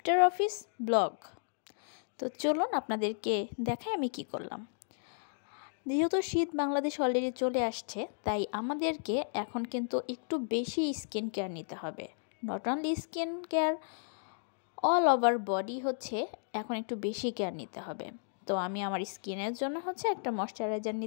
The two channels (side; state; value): right; silent; digital silence